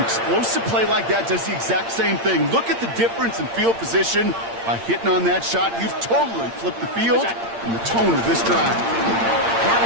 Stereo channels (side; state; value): left; late; 8.7 ms